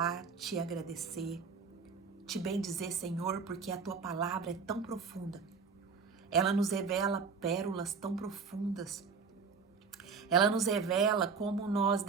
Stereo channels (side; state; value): left; quieter; 5.4 dB